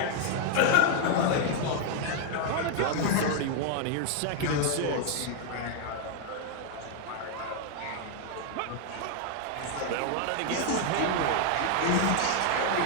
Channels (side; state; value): both; different; correlation 0.00